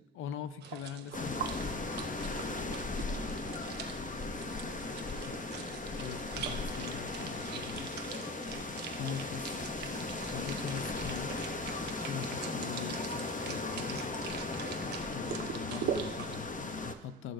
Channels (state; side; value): normal; both; correlation 0.29